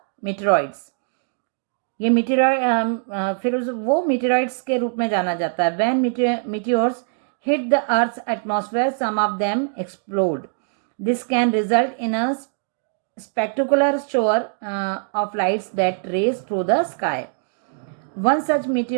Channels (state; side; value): silent; left; digital silence